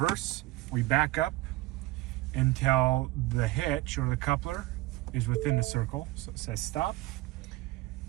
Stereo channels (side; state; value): left; quieter; 18.5 dB